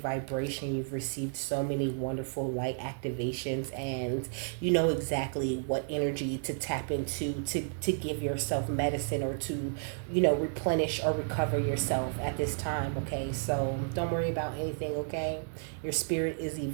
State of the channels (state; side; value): silent; left; digital silence